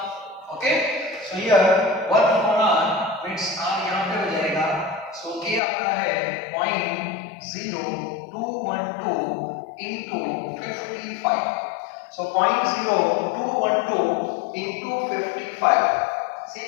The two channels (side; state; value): right; drops out; at 5.6 s